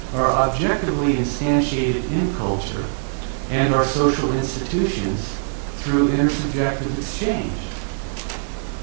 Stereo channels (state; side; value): silent; left; digital silence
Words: are objectively instantiated in culture and our social institutions through intersubjective exchange.